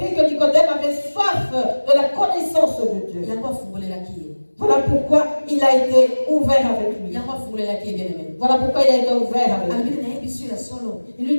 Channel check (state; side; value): inverted; both; correlation -1.00